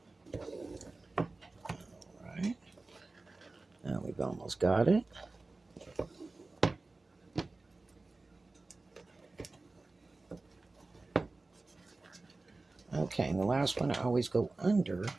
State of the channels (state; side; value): quieter; left; 3.4 dB